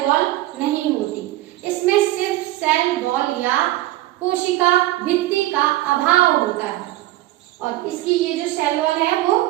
वॉल नहीं होती। इसमें सिर्फ सेल वॉल या कोशिका भित्ति का अभाव होता है। और इसकी ये जो सेल वॉल है वो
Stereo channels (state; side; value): quieter; left; 16.4 dB